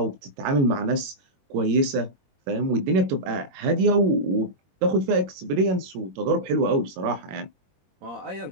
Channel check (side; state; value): left; late; 21 ms